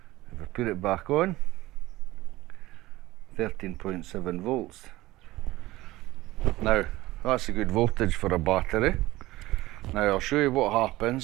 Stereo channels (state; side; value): quieter; left; 18.0 dB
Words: if I put it back on, 13.7 volts. Now that's a good voltage for a battery. Now I'll show you what